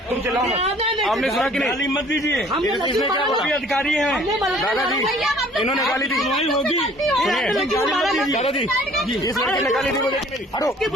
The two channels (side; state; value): both; normal; correlation 0.54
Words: तुम चिल्लाओ मत। आपने सुना कि नहीं? गाली मत दीजिए, इसने क्या बोला? अधिकारी हैं दादाजी, इन्होंने गाली दी। होगी। सुनिए दादाजी, इस लड़की ने गाली दी मुझे कि नहीं दी? हटो,